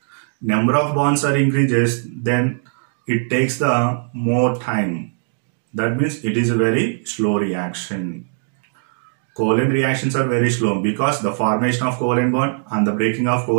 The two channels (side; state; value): left; silent; digital silence